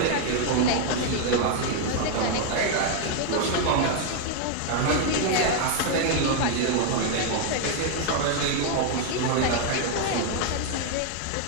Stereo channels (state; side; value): different; both; correlation 0.00